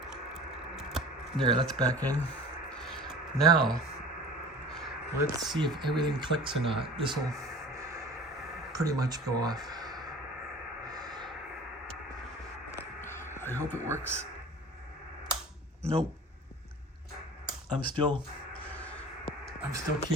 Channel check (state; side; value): normal; both; correlation 0.41